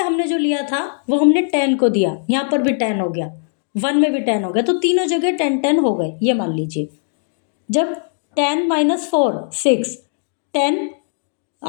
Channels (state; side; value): silent; right; digital silence